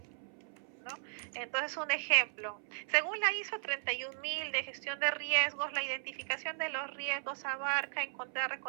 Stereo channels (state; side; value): silent; left; 54 dB below the other